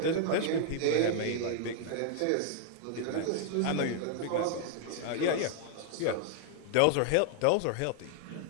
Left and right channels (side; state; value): both; different; correlation 0.00